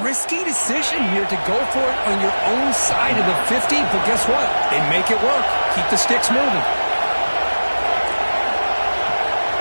risky decision here to go for it on your own side of the 50, but guess what? They make it work. Keep the sticks moving.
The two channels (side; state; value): both; inverted; correlation -1.00